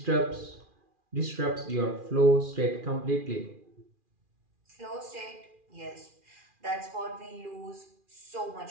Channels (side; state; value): left; late; 2.4 ms